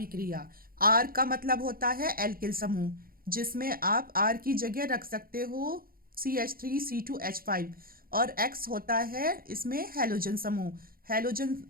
R का मतलब होता है एल्किल समूह, जिसमें आप R की जगह रख सकते हो CH3C2H5, और X होता है इसमें हैलोजन समूह। हैलोजन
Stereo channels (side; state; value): left; late; 0.42 ms